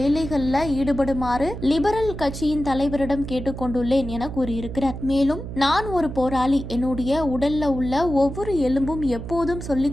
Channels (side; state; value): right; noise; hum, 8 dB below the sound